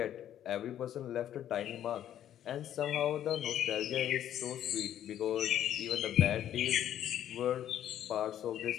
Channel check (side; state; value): right; quieter; 11.0 dB